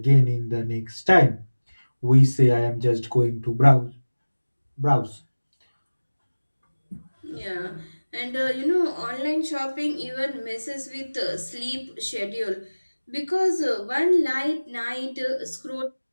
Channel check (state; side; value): inverted; both; correlation -1.00